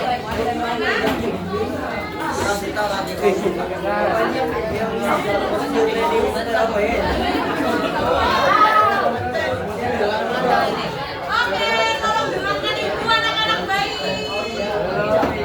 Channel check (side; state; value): both; identical; correlation 1.00